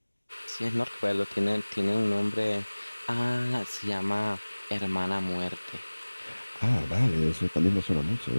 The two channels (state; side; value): inverted; both; correlation -1.00